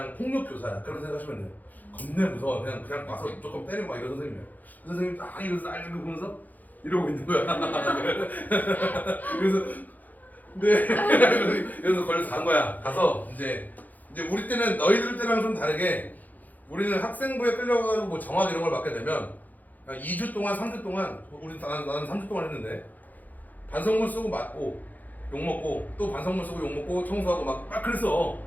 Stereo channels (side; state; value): right; late; 0.082 ms